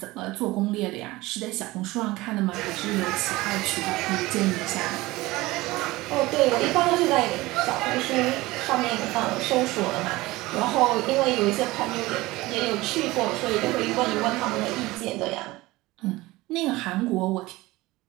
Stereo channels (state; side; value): quieter; left; 19.7 dB